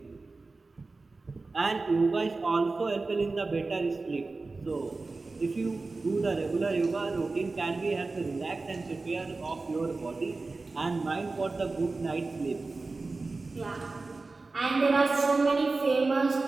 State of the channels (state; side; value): quieter; left; 3.6 dB